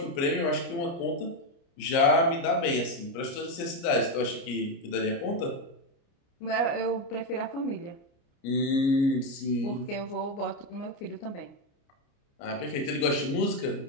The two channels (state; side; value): late; right; 29 ms